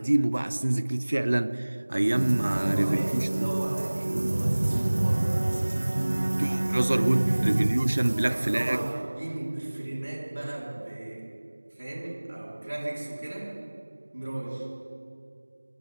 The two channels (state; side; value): inverted; both; correlation -1.00